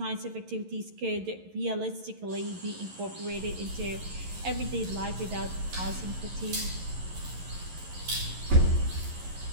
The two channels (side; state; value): left; late; 11 ms